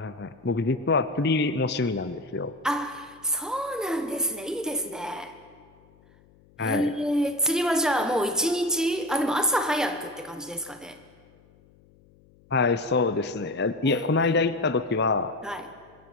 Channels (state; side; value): noise; left; hum, 29 dB below the sound